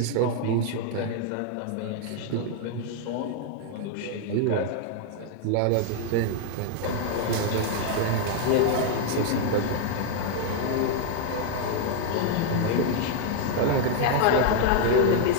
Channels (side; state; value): both; different; correlation 0.00